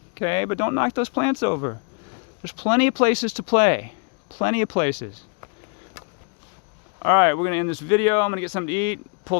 okay? But don't knock those plants over. There's plenty of places to play. Plenty of places. All right, we're going to end this video. I'm going to get something to eat, pull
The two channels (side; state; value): right; quieter; 36.2 dB